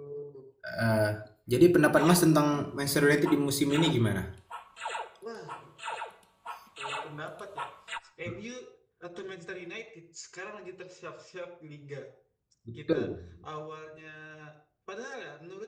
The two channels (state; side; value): identical; both; correlation 1.00